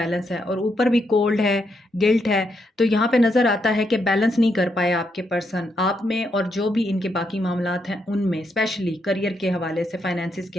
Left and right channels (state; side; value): normal; both; correlation 0.79